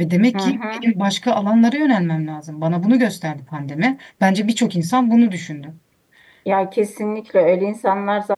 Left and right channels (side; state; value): both; identical; correlation 1.00